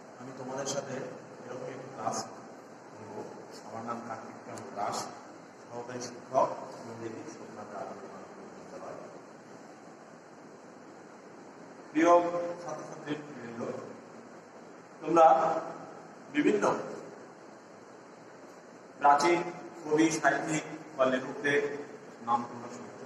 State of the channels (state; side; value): identical; both; correlation 1.00